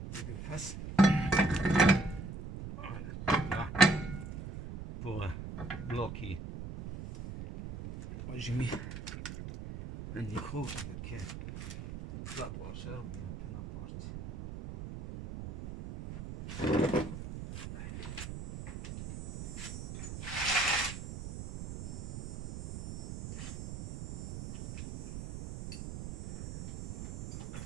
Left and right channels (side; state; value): right; noise; rumble, 8 dB below the sound